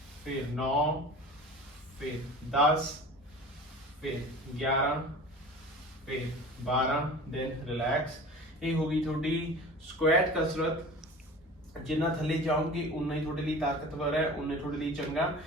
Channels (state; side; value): normal; both; correlation 0.39